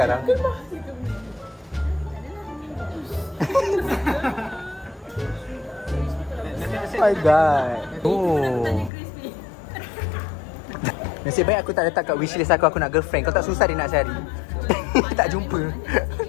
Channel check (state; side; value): drops out; right; at 8.9 s